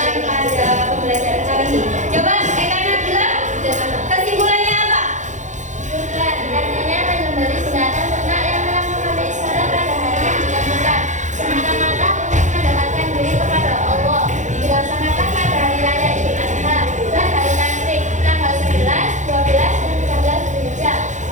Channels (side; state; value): left; late; 0.35 ms